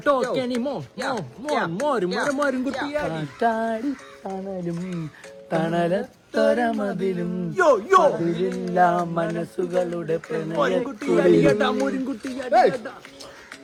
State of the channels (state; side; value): identical; both; correlation 1.00